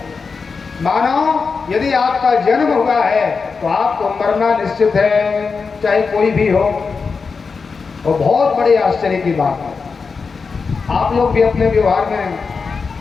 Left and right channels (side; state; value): right; quieter; 5.0 dB